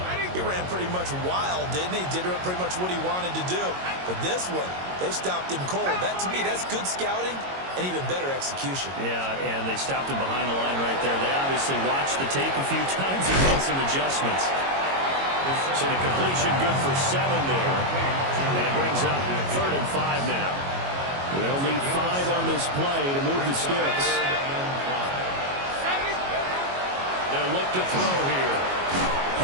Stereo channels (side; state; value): left; late; 22 ms